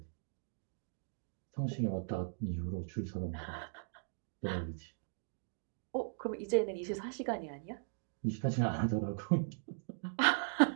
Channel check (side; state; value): left; silent; digital silence